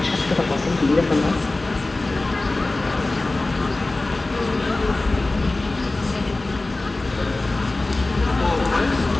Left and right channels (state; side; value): quieter; right; 3.0 dB